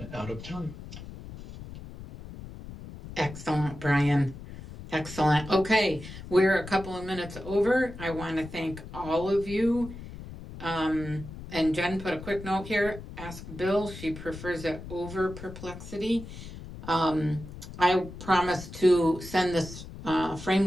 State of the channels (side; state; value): left; noise; rumble, 13 dB below the sound